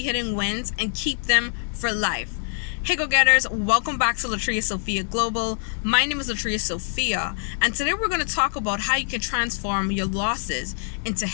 wins and keep them for life. Hey go-getters, welcome back to Latria Sophia Global. My name is Latria Sophia, and today we're going to talk about how you can transform your losses into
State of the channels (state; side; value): silent; right; digital silence